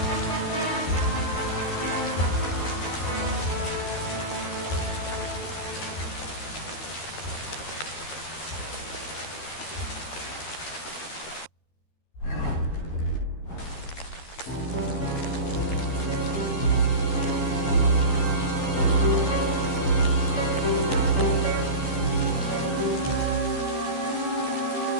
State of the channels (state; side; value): late; right; 13 ms